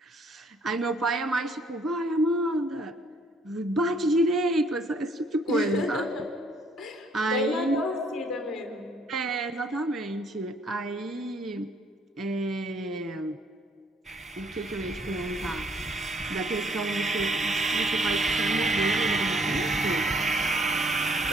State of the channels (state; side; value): normal; both; correlation 0.63